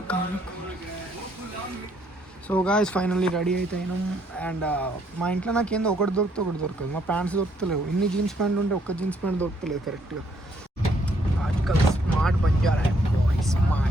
సో గాయ్స్ ఫైనల్లీ రెడీ అయితే అయినాం. అండ్ మా ఇంట్లో నాకు ఏందో ఒకటి దొరకదు. మా ప్యాంట్స్ దొరుకుతలేవు. ఇన్ని జీన్స్ ప్యాంట్లు ఉంటే ఒక్క జీన్స్ ప్యాంట్ దొరుకుతలేదు కరెక్ట్గా. Article smart Banjara boy,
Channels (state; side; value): normal; both; correlation 0.69